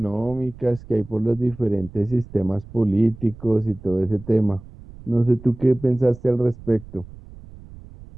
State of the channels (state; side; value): noise; right; rumble, 18 dB below the sound